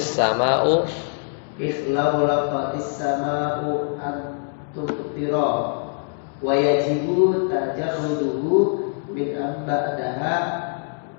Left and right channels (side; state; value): right; silent; digital silence